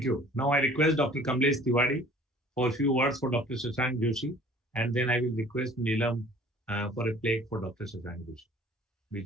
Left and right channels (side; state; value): both; normal; correlation 0.50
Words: you. Now I request Dr. Kamlesh Tiwari for a few words for Dr. Shashank Joshi, and then I will request Neelam for a plaque for Dr. Shashank Joshi,